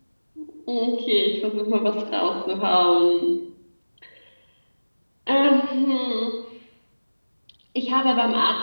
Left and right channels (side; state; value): both; inverted; correlation -1.00